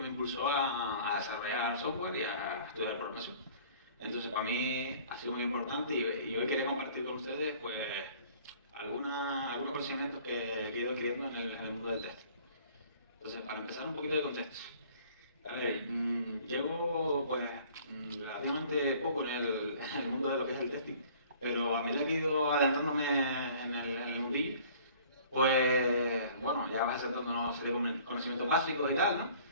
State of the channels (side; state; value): both; inverted; correlation -0.52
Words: me impulsó a desarrollar software y a estudiar programación. Entonces para mí ha sido muy importante y hoy quería compartir con ustedes pues algunos conocimientos que he ido adquiriendo en el mundo del test. Entonces, para empezar un poquito de contexto. A ver, llevo pues relativamente poco en el mundo de lo que es el testing, pero a medida que he ido adentrándome en el mundillo, pues bueno, ya vas acertando una serie de conocimientos básicos y tal, ¿no?